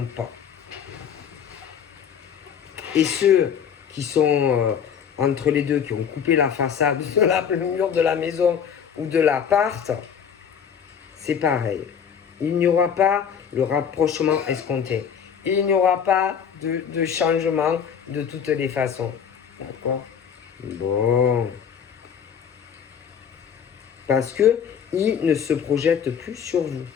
pas. Et ceux qui sont entre les deux, qui ont coupé la façade, le mur de la maison ou de l'appart, c'est pareil. Il n'y aura pas le rapprochement escompté. Il n'y aura pas de changement de toutes les façons. D'accord? Bon. Parce que ils ne se projettent plus sur vous.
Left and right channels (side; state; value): right; quieter; 7.7 dB